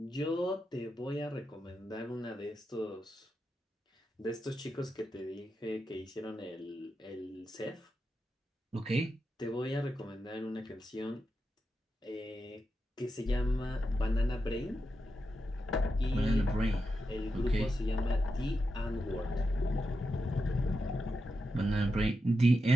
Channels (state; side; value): normal; both; correlation 0.88